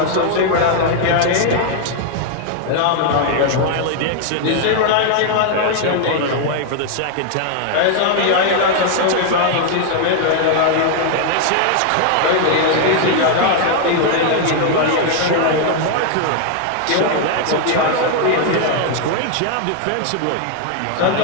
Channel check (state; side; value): different; both; correlation 0.00